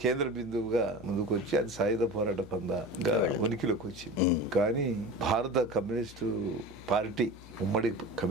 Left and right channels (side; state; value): left; noise; hum, 19 dB below the sound